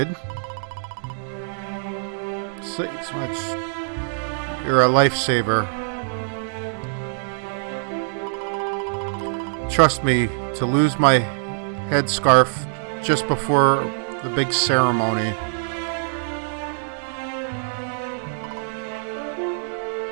You're a lifesaver. Trust me, to lose my headscarf just before the big ceremony.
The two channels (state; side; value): silent; left; digital silence